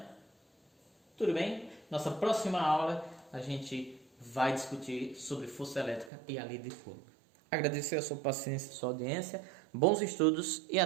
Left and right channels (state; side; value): drops out; left; at 6.1 s